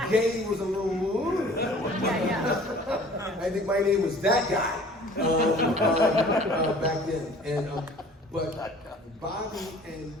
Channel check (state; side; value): normal; both; correlation 0.49